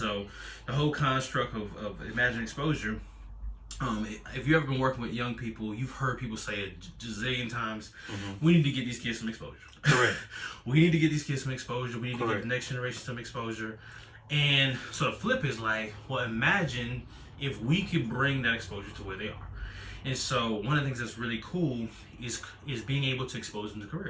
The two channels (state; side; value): identical; both; correlation 1.00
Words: the whole construct of Imagine Exposure, if you've ever been working with young people, you've heard people say it gazillion times, we need to get these kids some exposure. Correct. We need to get these kids some exposure. We need to Correct. get the next generation some exposure. And so the flip is like, well, imagine if we could bring that exposure to where they are. And so one of the things that's really cool is being able to expose them to